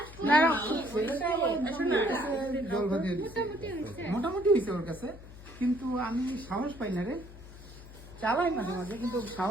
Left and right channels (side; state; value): left; noise; hum, 17 dB below the sound